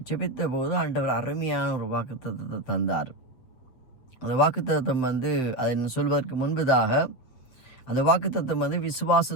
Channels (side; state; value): right; late; 7.6 ms